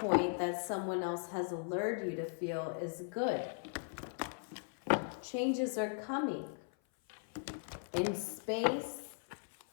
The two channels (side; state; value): right; silent; 52 dB below the other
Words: that someone else has lured you to feel is good. Changes are coming in space,